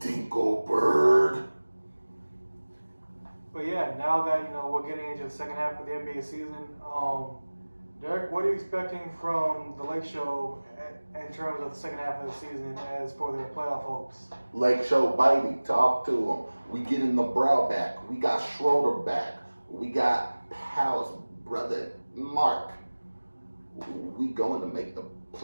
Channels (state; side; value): inverted; both; correlation -1.00